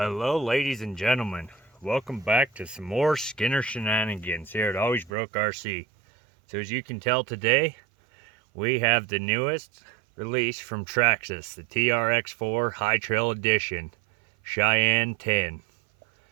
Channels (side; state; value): left; drops out; at 5.1 s